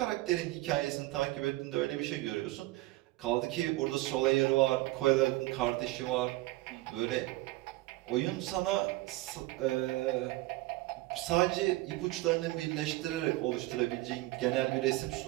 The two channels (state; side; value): quieter; left; 19.4 dB